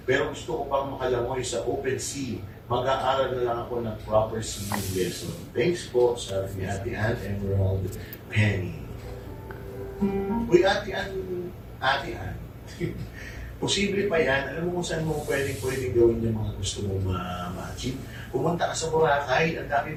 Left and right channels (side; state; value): both; identical; correlation 1.00